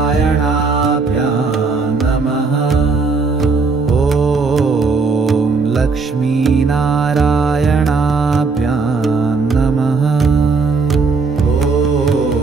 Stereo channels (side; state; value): left; quieter; 4.4 dB